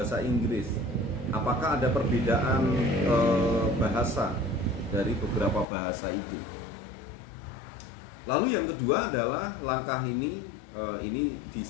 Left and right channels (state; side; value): drops out; right; at 5.7 s